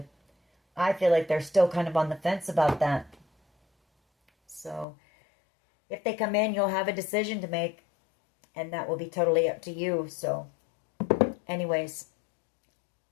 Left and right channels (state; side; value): drops out; right; at 4.9 s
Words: I feel like they're still kind of on the fence about that. So if they come in, you'll have a decision to make, and that will be totally up to you. So anyways,